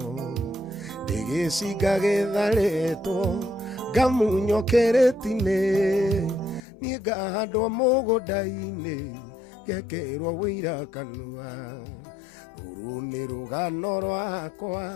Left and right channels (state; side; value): drops out; right; at 6.6 s